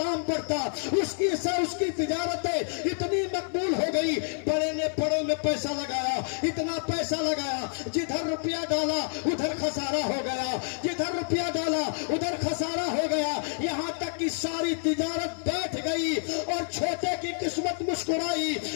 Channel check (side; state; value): right; silent; 59 dB below the other